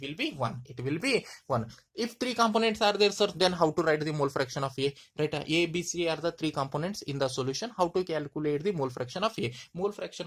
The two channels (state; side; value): identical; both; correlation 1.00